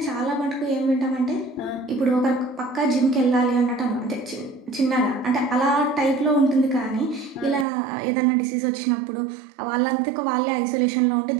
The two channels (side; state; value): left; drops out; at 7.7 s